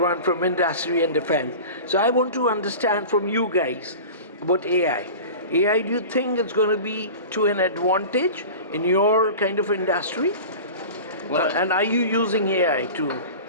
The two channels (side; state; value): both; inverted; correlation -0.34